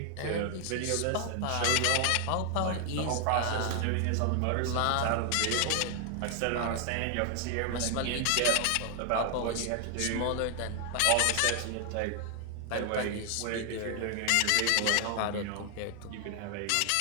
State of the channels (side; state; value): both; different; correlation 0.00